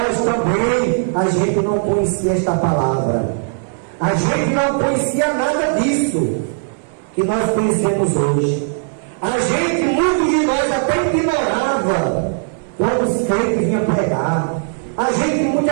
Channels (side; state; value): left; silent; 62 dB below the other